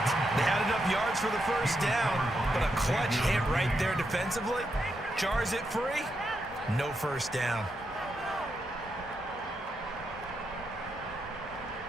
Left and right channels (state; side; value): normal; both; correlation 0.83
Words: They had enough yards for the first down, but a clutch hit right there defensively. Jars it free, no first down.